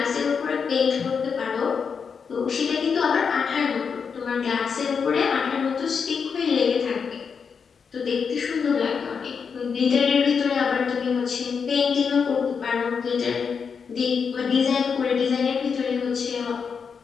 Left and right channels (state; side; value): quieter; right; 6.1 dB